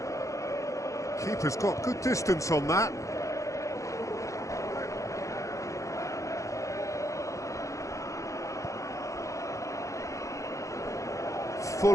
Keeper's got good distance on that. Full.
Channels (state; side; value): late; right; 0.15 ms